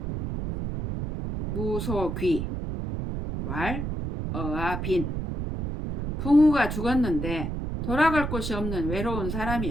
무소귀, 왈, 어아, 빈. 붕우가 죽었는데 돌아갈 곳이 없는 외로운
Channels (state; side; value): noise; right; rumble, 4 dB below the sound